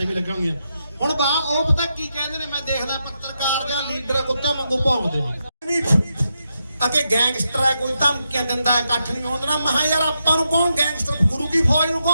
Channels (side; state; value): both; inverted; correlation -0.84